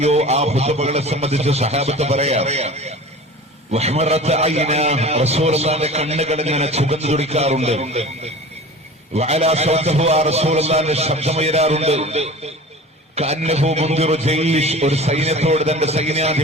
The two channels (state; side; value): normal; both; correlation 0.38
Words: ആ ഖുതുബകളെ സംബന്ധിച്ച് സഹാബത്ത് പറയാം, റസൂലുള്ളാഹിന്റെ കണ്ണുകൾ ഇങ്ങനെ ചുവന്നു തുടിക്കാറുണ്ട്, റസൂലുള്ളാഹിന്റെ ശബ്ദമുയരാറുണ്ട്, കഅന്നഹു മുൻദിറു ജയ്ഷ്, ഒരു സൈന്യത്തോട് തന്റെ